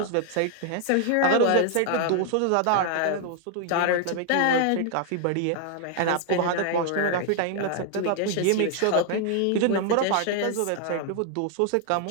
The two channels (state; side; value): different; both; correlation 0.00